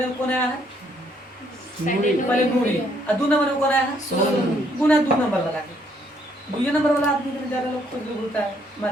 कौन आया है? पहले नूरी, और 2 नंबर में कौन आया है? सोनू। गुना 2 नंबर लगा के, 2 नंबर वाला आदमी में ज्यादा लोग खुद बोलता है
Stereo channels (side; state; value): both; normal; correlation 0.68